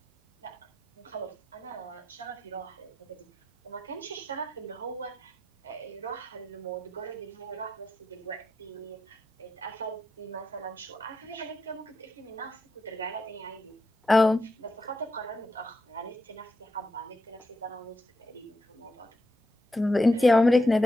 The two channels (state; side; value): normal; both; correlation 0.84